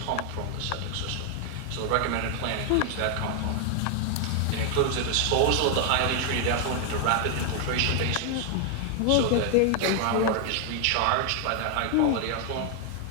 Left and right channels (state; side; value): different; both; correlation 0.00